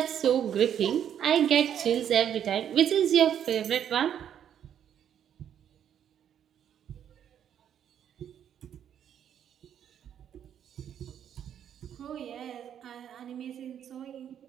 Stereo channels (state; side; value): quieter; left; 9.4 dB